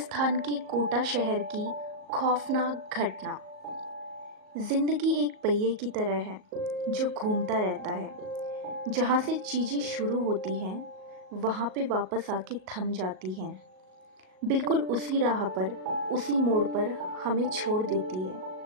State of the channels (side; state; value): left; late; 38 ms